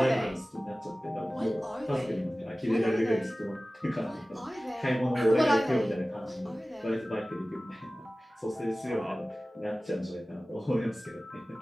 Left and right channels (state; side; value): normal; both; correlation 0.97